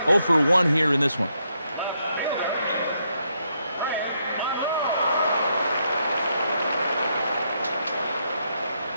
0 for 1 here in this one.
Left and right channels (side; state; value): both; inverted; correlation -0.78